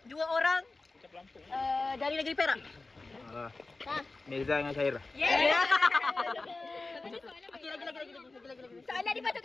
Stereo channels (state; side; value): quieter; right; 3.5 dB